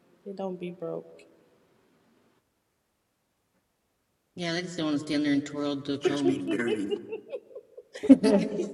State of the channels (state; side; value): identical; both; correlation 1.00